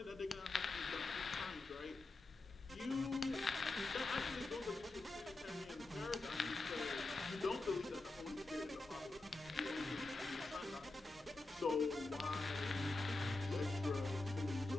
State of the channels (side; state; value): right; quieter; 3.1 dB